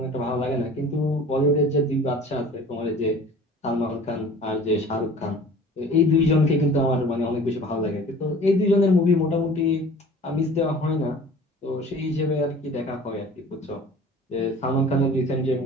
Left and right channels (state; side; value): normal; both; correlation 0.45